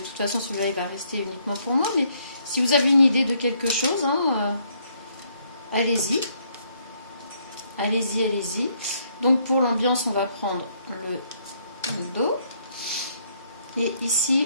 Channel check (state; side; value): inverted; both; correlation -0.69